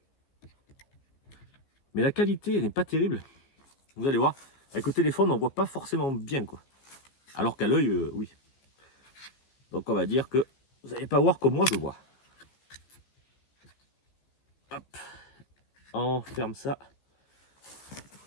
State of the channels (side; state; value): right; late; 15 ms